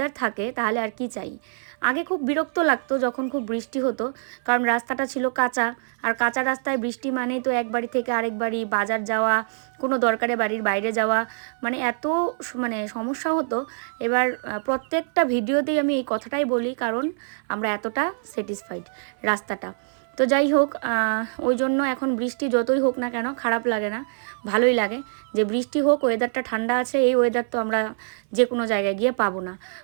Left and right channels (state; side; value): silent; left; 62 dB below the other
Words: থাকে তাহলে আর কি চাই। আগে খুব বিরক্ত লাগতো যখন খুব বৃষ্টি হতো, কারণ রাস্তাটা ছিল কাঁচা, আর কাঁচা রাস্তায় বৃষ্টি মানেই তো এক বাড়ি থেকে আরেক বাড়ি বাজার যাওয়া, কোনো দরকারে বাড়ির বাইরে যাওয়া, মানে এত সমস্যা হতো। এবার প্রত্যেকটা ভিডিওতেই আমি এই কথাটাই বলি, কারণ আমরা এতটা স্যাটিসফাইড রাস্তাটা। তো যাই হোক, ওই জন্য এখন বৃষ্টি যতই হোক না কেন খারাপ লাগে না, ভালোই লাগে যে বৃষ্টি হোক, ওয়েদারটা ঠান্ডা আছে। এই ওয়েদার তো আমরা যে কোনো জায়গায় গিয়ে পাবো না।